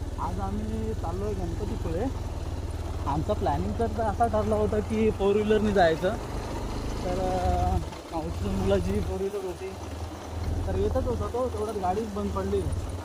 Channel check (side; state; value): both; identical; correlation 1.00